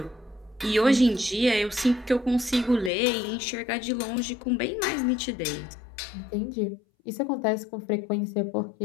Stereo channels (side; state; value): right; drops out; at 2.9 s